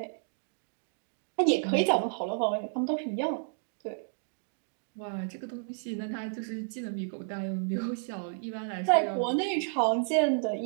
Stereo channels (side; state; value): left; silent; digital silence